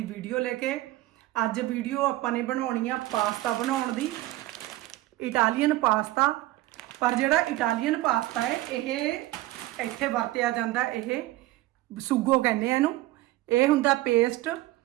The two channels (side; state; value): left; quieter; 17.2 dB